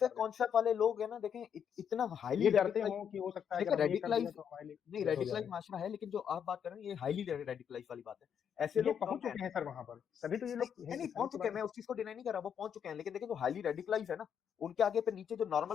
रहे हैं? कॉन्सेप्ट वाले लोग हैं ना, देखें इतना हाईली ये डरते रेडिकलाइज, हो कि हो सकता है अगर देखिए हमने ये कर दिया रेडिकलाइज, तो हमारे लिए नहीं गलत हो रेडिकलाइज जाएगा। माशरा है, लेकिन जो आप बात कर रहे हैं ये हाईली रेडिकलाइज वाली बात है, ऐसे ये लोग कम पहुंच हैं। चुके हैं सर वहां पर, तभी तो ये नहीं लोग नहीं नहीं, हिंदुस्तानी पहुंच के चुके बारे हैं, में। मैं उस चीज को डिनाई नहीं कर रहा, वो पहुंच चुके हैं, लेकिन देखिए जो हाईली रेडिकलाइज है ना, उनके आगे पे नीचे जो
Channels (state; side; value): quieter; right; 8.1 dB